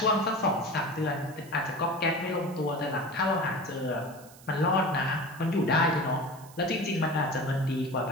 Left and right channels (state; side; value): noise; right; hiss, 22 dB below the sound